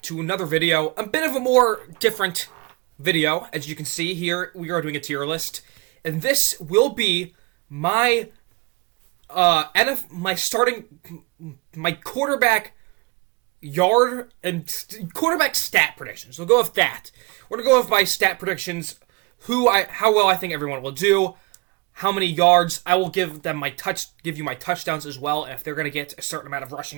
to another video, a bit of a more different video. As you can see here, we are doing a tier list, and this will be my my quarterback yard and quarterback stat predictions. We'll go with that. We're gonna go with my stat predictions, how well I think everyone will do, how many yards. I will give you my touchdowns as well, and if they're gonna get a certain amount of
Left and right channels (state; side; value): quieter; left; 27.2 dB